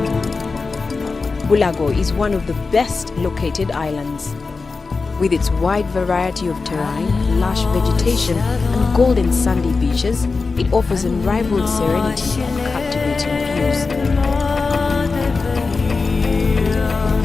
Bulago is one of the best located islands. With its wide variety of terrain, lush vegetation and golden sandy beaches, it offers unrivaled serenity and captivating views.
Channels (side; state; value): right; quieter; 4.2 dB